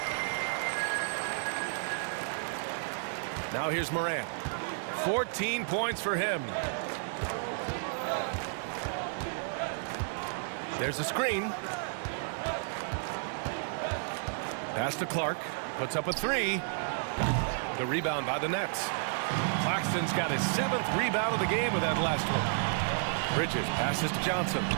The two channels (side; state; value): left; silent; 56 dB below the other